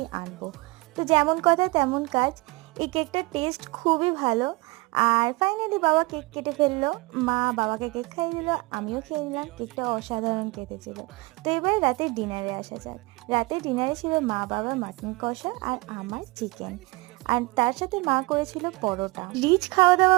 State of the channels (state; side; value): quieter; left; 24.7 dB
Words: আনবো। তো যেমন কথা তেমন কাজ, এই কেকটার টেস্ট খুবই ভালো। আর ফাইনালি বাবা কেক কেটে ফেললো, মা বাবাকে কেক খাইয়ে দিল, আমিও খেয়ে নিলাম। কেকটা অসাধারণ কেটেছিল। তো এবার রাতের ডিনারে আসা যাক। রাতের ডিনারে ছিল মা বাবার মাটন কষা আর আমার চিকেন, আর তার সাথে মা করেছিল পরোটা। রিচ খাওয়া দাওয়া